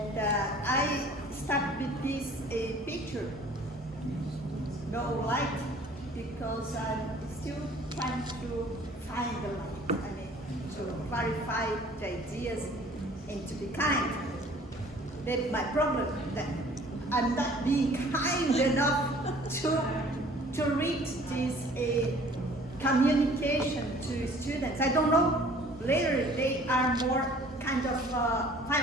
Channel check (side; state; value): both; normal; correlation 0.52